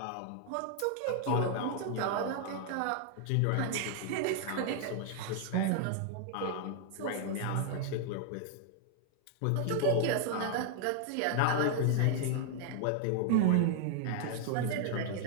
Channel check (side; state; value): both; different; correlation -0.01